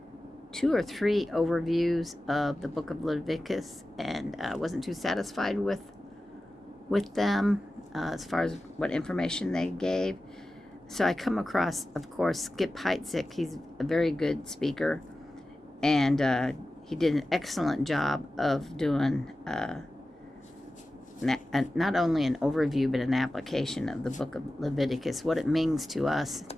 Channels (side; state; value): both; normal; correlation 0.94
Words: 2 or 3 overviews of the book of Leviticus. And I wasn't too satisfied with them as far as what information they gave. So I come across, of course, Skip Heitzig. He's a very good speaker, and he did an excellent job of doing not only an overview but an application of the book of Leviticus, what it means to us